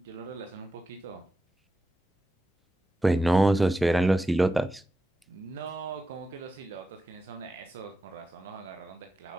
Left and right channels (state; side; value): normal; both; correlation 0.91